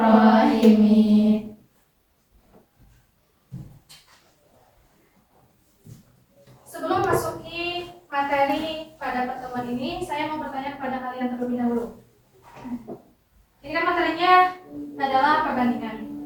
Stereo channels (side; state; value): both; identical; correlation 1.00